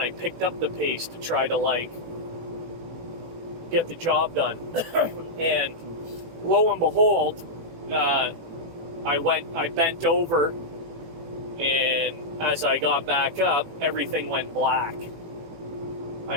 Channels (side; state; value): left; late; 18 ms